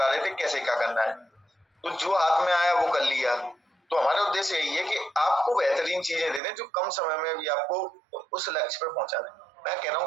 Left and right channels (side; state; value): left; drops out; at 6.4 s